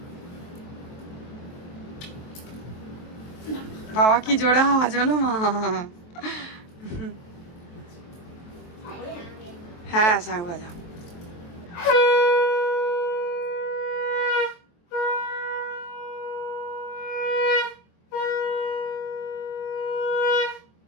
বাবা কি জোরে আওয়াজ হলো মা। হ্যাঁ, শাঁখ বাজা।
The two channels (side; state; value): right; late; 23 ms